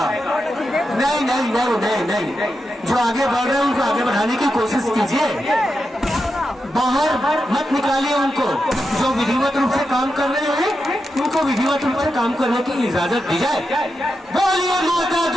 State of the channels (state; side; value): normal; both; correlation 0.87